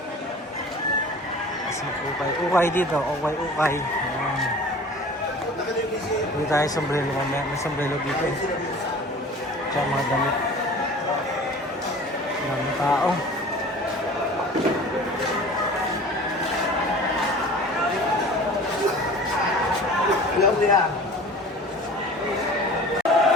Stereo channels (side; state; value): both; normal; correlation 0.42